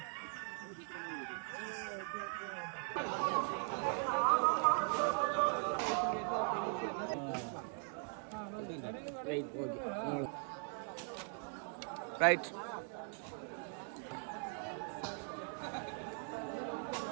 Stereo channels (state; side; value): silent; left; 51 dB below the other